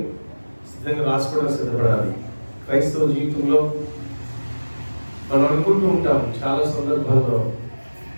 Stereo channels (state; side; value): inverted; both; correlation -1.00